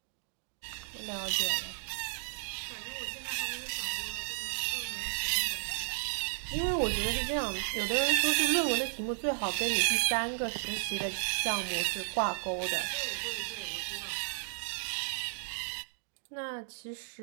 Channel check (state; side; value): silent; left; digital silence